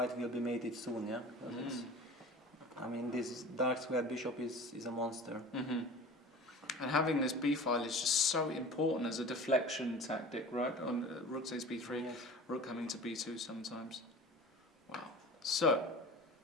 will be mated soon, yeah? Because it's, I mean, this dark squared bishop is a monster. And having this b file is just so important as a deflection tactic, right? On rook takes b3, Yes. rook coming to b2 sometimes. Wow. So,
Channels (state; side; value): normal; both; correlation 0.39